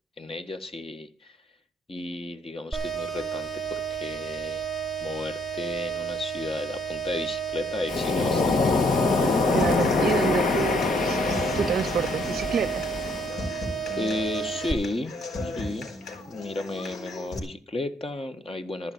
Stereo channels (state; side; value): normal; both; correlation 0.67